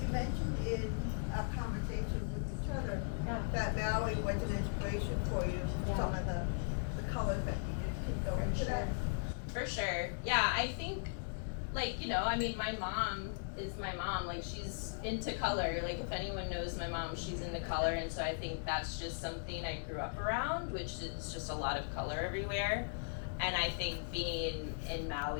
You mentioned in a conversation with each other that Maui was an inspiration for you. Some of the colors that you used can go into that. For sure. Yeah, I think, like, my mom is my mom. Like, she's into color. Like, if anyone knows my mom, she's into color. And so I think that's just something I grew up around, which is just a lot of color everywhere. And I think being in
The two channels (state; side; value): silent; right; digital silence